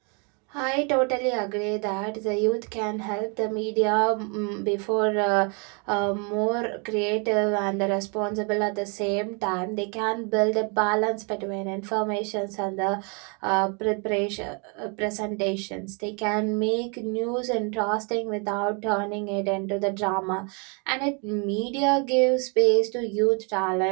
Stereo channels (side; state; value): left; quieter; 35.2 dB